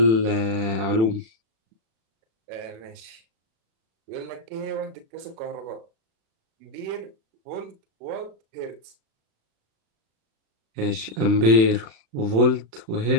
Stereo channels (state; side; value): late; left; 36 ms